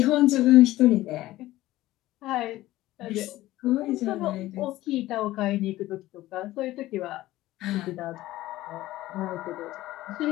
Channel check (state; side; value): quieter; right; 16.3 dB